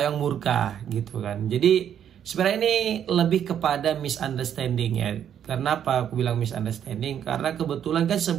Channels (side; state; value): left; quieter; 9.4 dB